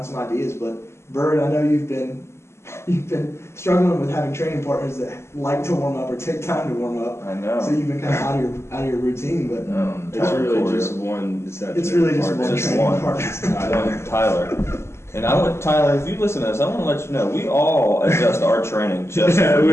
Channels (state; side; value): late; right; 0.13 ms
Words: some ideas, but Bird, I know you've been you've been struggling with having training partners that like to warm up or take time to warm up. I know. So you've been kind of out of your routine, but It's really just one. it's really just one Just training one. partner. Tyler. And Tyler, if you listen to this, I want to let you know, we all adjust our training just for